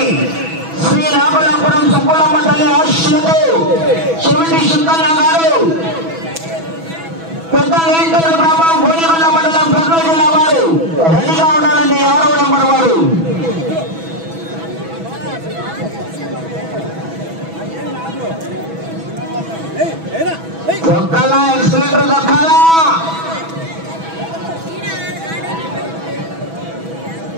శ్రీ నాగలాపురం సుబ్బులమ్మ తల్లి ఆశీస్సులతో చెవిటి సుందన్న గారు, పెద్ద వేంకట గ్రామం, గోలిగొండ మండలం, కర్నూలు జిల్లా వారు రెడీగా ఉండాలండి. 6వ నెంబర్ వారు దొక్కాలా, ఎక్సలెంటర్ దొక్కాలా.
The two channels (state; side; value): late; left; 6.1 ms